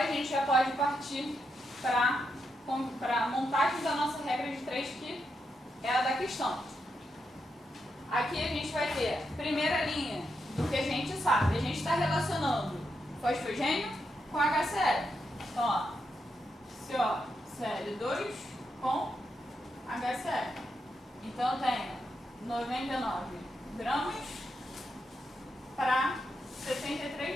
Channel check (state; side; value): normal; both; correlation 0.83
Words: a gente já pode partir para a montagem da nossa regra de 3, que é a da questão. Aqui a gente vai ter primeira linha do que a gente sabe. A gente está relacionando fosfogênio com HCl. Então, ó, COCl2 com HCl. Então, eu tenho 99 gramas para